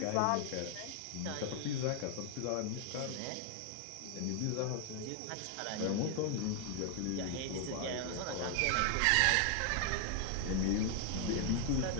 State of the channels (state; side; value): different; both; correlation 0.00